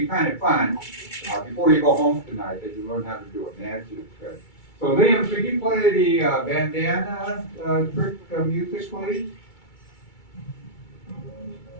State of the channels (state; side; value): late; right; 2.3 ms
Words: kind of fun, before you go home tonight, that you learn how to do a magic trick. So Liam, could you play the bandana trick music, please?